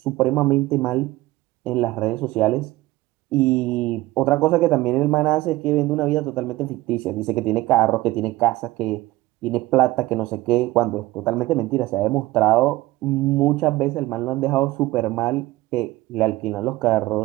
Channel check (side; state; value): left; quieter; 18.3 dB